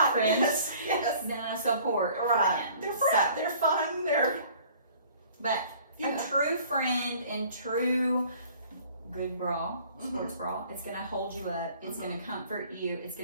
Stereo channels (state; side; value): inverted; both; correlation -0.52